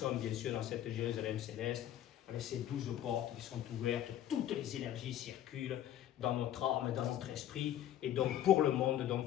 bien sûr dans cette Jérusalem céleste, avec ces 12 portes qui sont ouvertes, toutes les énergies circulent dans notre âme, dans notre esprit, et donc pour le monde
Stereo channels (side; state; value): right; quieter; 11.5 dB